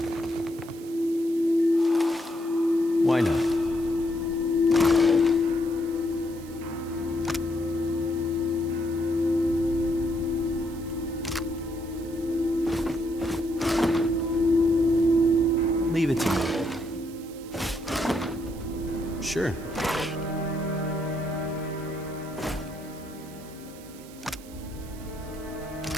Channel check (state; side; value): noise; right; hiss, 20 dB below the sound